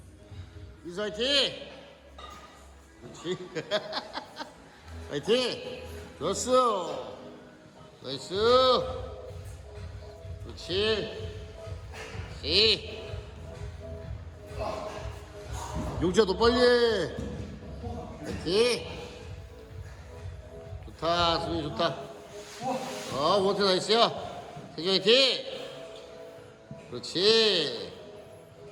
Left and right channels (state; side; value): identical; both; correlation 1.00